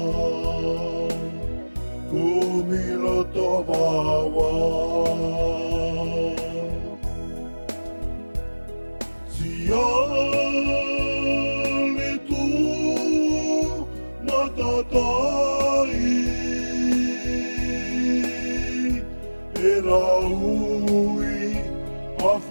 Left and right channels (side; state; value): both; inverted; correlation -1.00